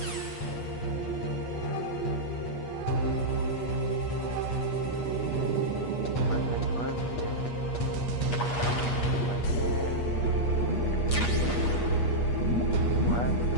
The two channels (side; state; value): right; late; 8.4 ms